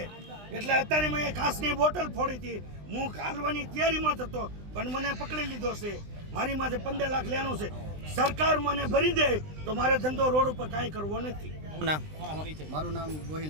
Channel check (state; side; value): late; left; 20 ms